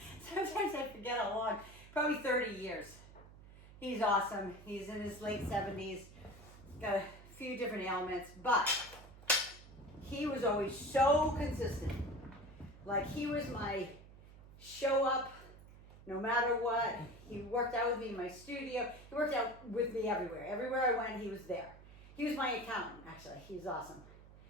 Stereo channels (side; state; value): right; noise; hum, 19 dB below the sound